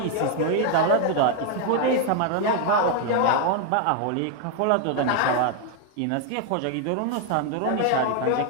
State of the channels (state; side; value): different; both; correlation 0.00